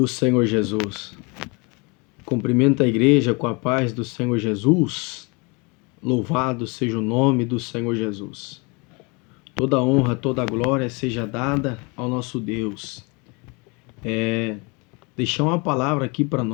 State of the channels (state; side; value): quieter; right; 29.7 dB